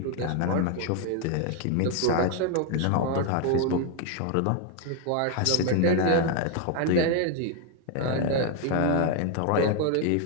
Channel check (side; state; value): both; different; correlation 0.01